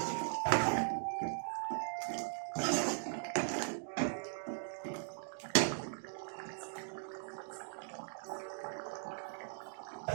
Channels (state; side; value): silent; left; digital silence